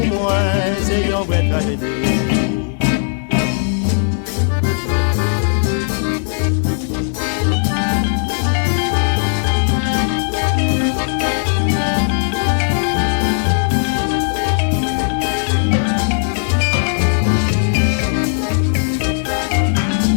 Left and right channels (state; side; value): silent; right; digital silence